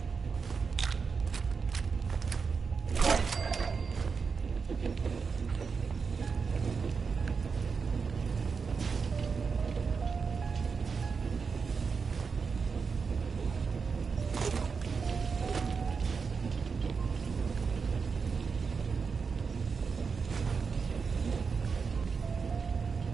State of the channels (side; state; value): left; quieter; 5.3 dB